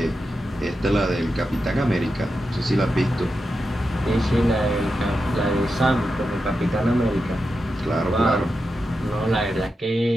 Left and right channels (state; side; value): normal; both; correlation 0.89